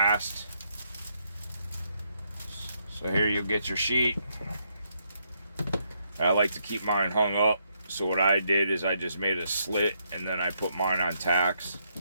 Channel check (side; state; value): both; inverted; correlation -0.76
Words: So here you'll get your sheet. I like to keep mine hung up. So what I did is I just made a slit and then I put mine on tacks.